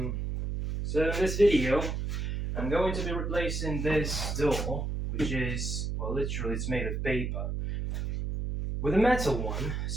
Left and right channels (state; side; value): noise; right; hum, 2 dB below the sound